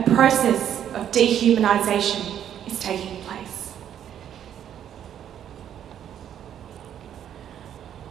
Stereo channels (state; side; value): quieter; left; 9.9 dB